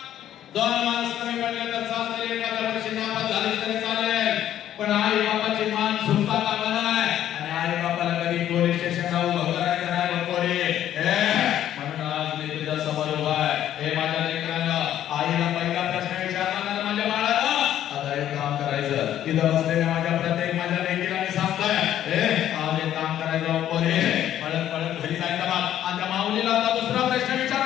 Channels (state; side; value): quieter; right; 11.4 dB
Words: 2 माणसं कमी पडले तर चालते, एखाद्या वर्षी नापास झाली तरी चालेल, पण आई बापाची मान झुकता कामा नये. आणि आई बापाला कधी पोलीस स्टेशनला उभं करायचं नाही बा पोरी. म्हणून आज मी तुझ्या समोर उभा आहे. माझ्या लेकरांना आईला पहिला प्रश्न विचारला माझ्या बाळाला, आता एक काम करायचं. इथं बसलेल्या माझ्या प्रत्येक माझ्या लेकीला मी सांगतोय, आज एक काम करायचं पोरी. पळत पळत घरी जायचं बा. आणि त्या माऊलीला आता दुसरा प्रश्न